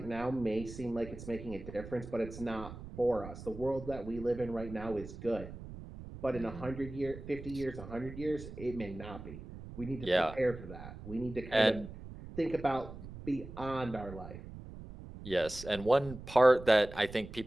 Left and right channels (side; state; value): right; noise; rumble, 13 dB below the sound